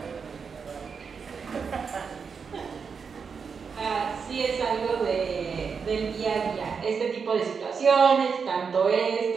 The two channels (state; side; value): quieter; left; 5.8 dB